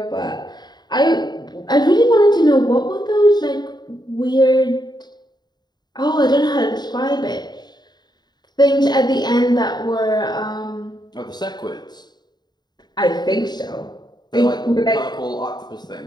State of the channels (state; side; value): late; right; 0.20 ms